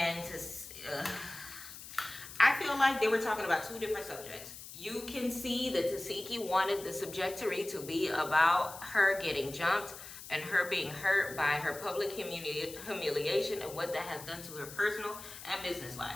I feel like they were talking about 2 different subjects. You can see that Tasiki wanted the subjectory to be about her getting jumped and her being hurt by her public humiliation and what that has done to her personal and business life.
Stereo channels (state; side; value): noise; left; hiss, 13 dB below the sound